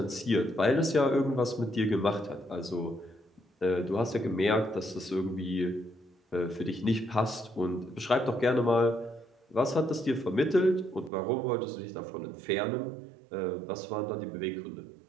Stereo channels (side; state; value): left; drops out; at 11.1 s